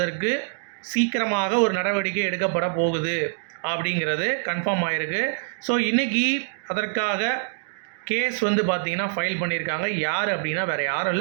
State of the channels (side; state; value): left; silent; digital silence